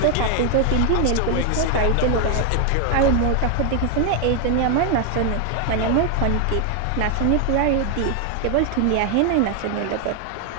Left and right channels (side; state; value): both; different; correlation 0.01